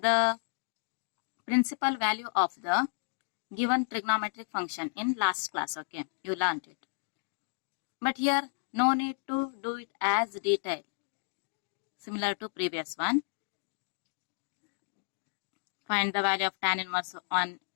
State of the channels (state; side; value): silent; right; digital silence